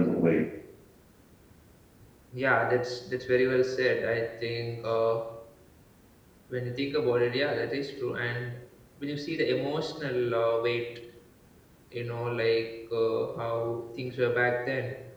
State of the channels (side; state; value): both; identical; correlation 1.00